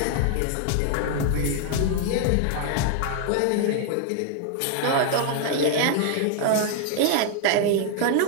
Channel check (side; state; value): both; different; correlation 0.00